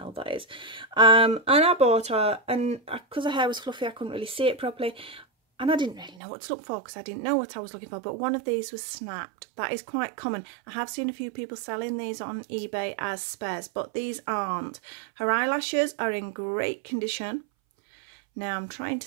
that is. And I bought her, and because her hair was fluffy, I couldn't really see it properly. And I didn't really know what to look for because I didn't know what I was looking for. But one of these was snapped. That is quite common. I have seen a few people selling these on eBay as spares, but these aren't. Her eyelashes are in great condition. Now I'm trying to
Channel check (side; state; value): left; drops out; at 6.2 s